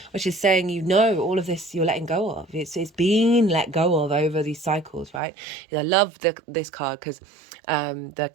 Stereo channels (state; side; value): drops out; left; at 5.2 s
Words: which is saying, you know, all of this you're letting go of. It's being let go of over these cycles, right? I love this card because the